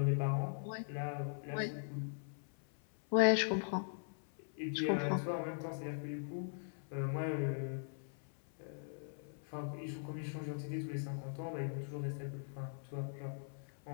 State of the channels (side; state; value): right; silent; 51 dB below the other